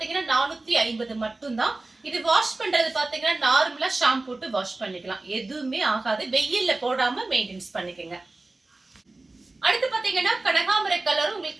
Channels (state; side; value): quieter; left; 3.1 dB